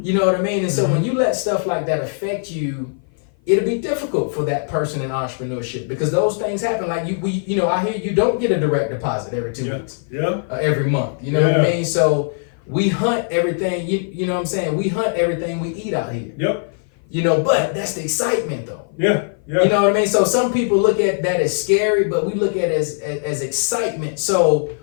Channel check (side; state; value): right; silent; 56 dB below the other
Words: know what I mean? And so when you let stuff like that affect you, it'll be difficult for that person in entrepreneurship because those things happen. Like, you know, I hear you don't get a direct deposit every 2 weeks. Yeah. Every month. You know what I mean? So we hunt everything, you know what I'm saying? We hunt everything we eat out here. Yep. You know, but that's the excitement though. Yeah. Yeah. You know what I mean? So some people look at that as scary, but we look at it as excitement. So,